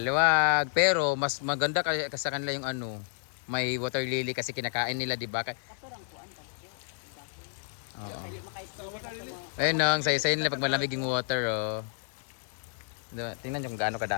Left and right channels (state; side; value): silent; right; 57 dB below the other